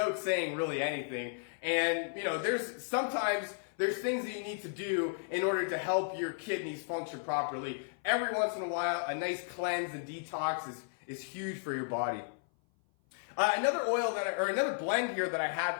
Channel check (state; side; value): silent; right; 55 dB below the other